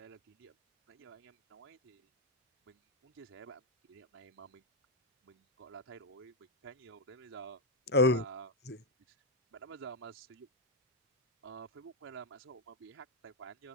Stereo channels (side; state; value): both; normal; correlation 0.01